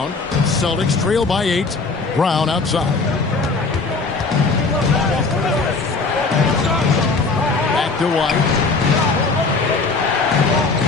Celtics trail by 8. Brown outside. To White.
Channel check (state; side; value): quieter; right; 4.0 dB